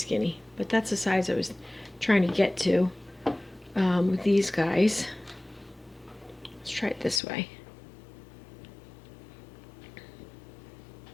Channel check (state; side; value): drops out; right; at 7.2 s